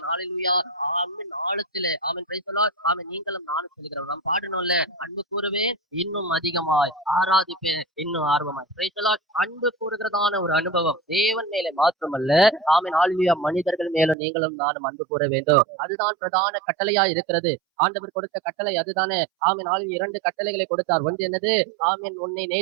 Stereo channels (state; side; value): drops out; left; at 14.2 s